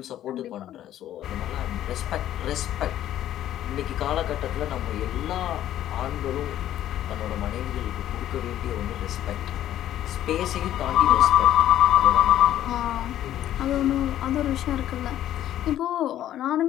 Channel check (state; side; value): quieter; right; 12.2 dB